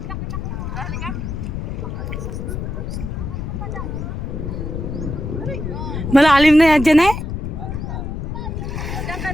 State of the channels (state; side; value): noise; left; rumble, 4 dB below the sound